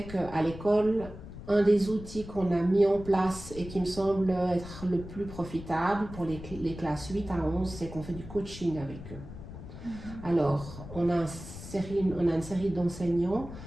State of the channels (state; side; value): noise; left; rumble, 13 dB below the sound